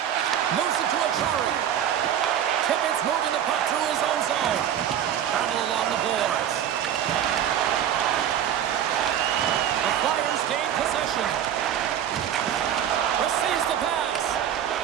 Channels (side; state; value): left; quieter; 9.9 dB